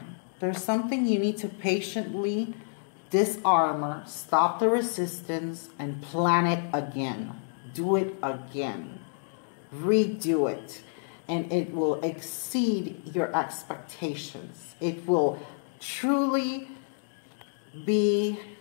there's something you need to patiently disarmor, stop the resistance, and plan it again. Do it again. Redo it. And it will exceed your expectations. It will truly be,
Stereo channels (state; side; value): silent; right; digital silence